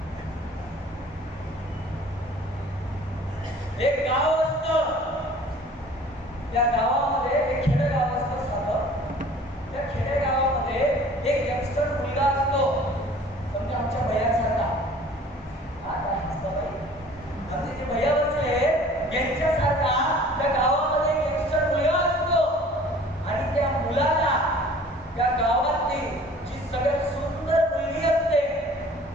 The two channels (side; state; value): both; normal; correlation 0.49